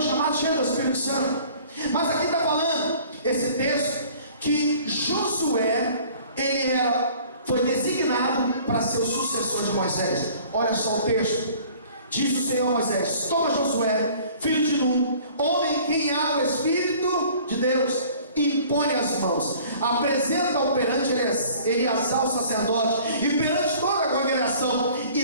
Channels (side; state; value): both; inverted; correlation -0.51